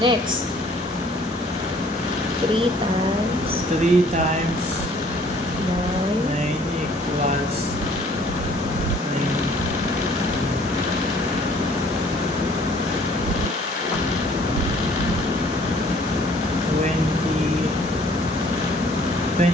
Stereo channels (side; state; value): both; normal; correlation 0.57